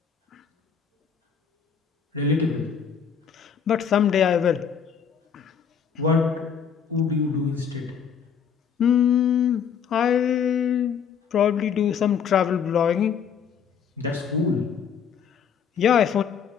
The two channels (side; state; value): right; quieter; 7.3 dB